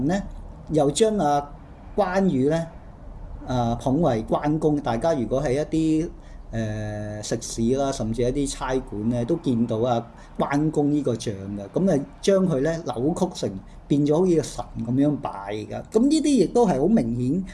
咧又將關羽咧捧為關公。大家如果係一啲食肆啦，甚至一啲差館咧，都見到關公呢個像嘅。咁將佢咧扭曲成變咗好似個神咁樣拜㗎。咁呢啲亦都係好明顯，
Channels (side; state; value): both; identical; correlation 1.00